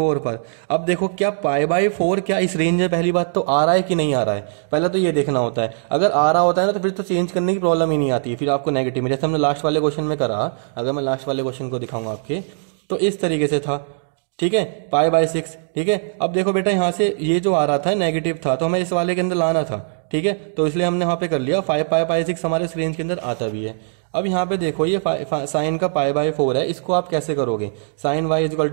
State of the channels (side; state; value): left; silent; digital silence